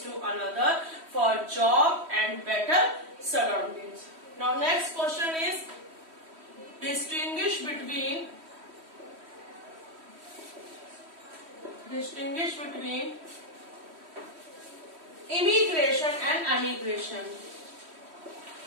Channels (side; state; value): left; late; 3.1 ms